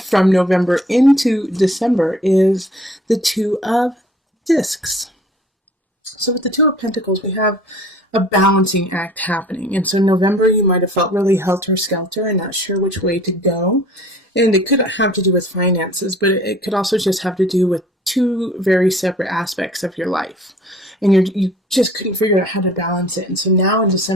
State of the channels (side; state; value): both; normal; correlation 0.50